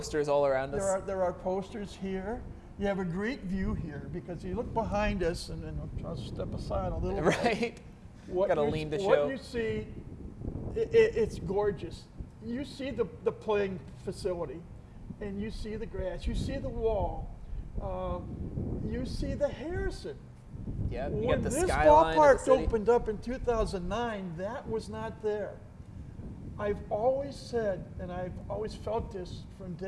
all around us. There are posters here. You have a great view here because you look behind us, and then I'll step aside a little bit. Right. Got to lean to show. What you see, it's gorgeous. You see the playing facility, and you see the grass. You see the wall. You see the Harrison. Yeah, you when got the this skyline ballpark opened up in 2009, that was not there. I've always said, and I've always felt this from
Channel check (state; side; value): identical; both; correlation 1.00